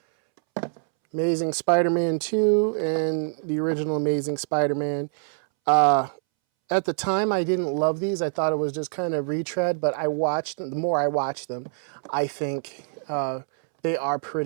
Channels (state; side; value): silent; left; 62 dB below the other